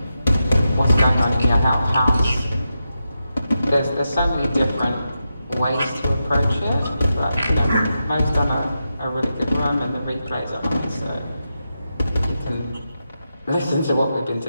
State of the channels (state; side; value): inverted; both; correlation -0.88